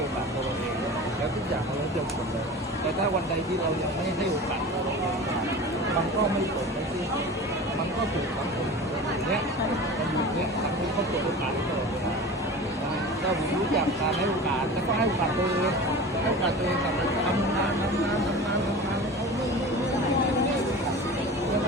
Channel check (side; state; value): both; normal; correlation 0.34